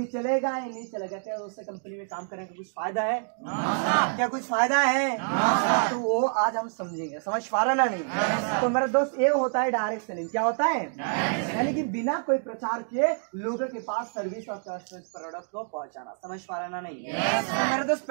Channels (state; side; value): silent; left; digital silence